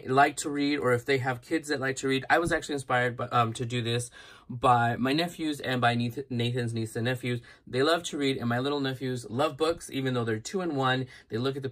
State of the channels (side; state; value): both; identical; correlation 1.00